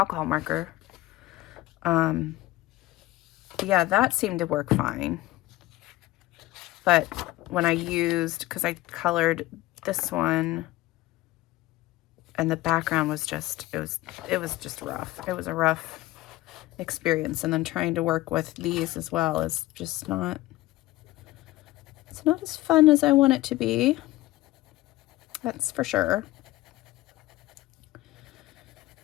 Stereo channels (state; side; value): quieter; right; 17.7 dB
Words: marker. Yeah, that seemed to work fine. But when I used, because I colored this one, and the background was just, it was just rough. It was a rough experience. And then trying to work with these as well is just not, it's not as fun as I want it to be. That's for sure.